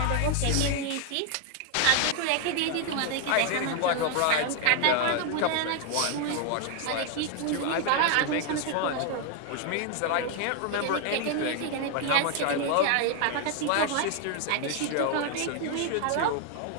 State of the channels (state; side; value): different; both; correlation 0.01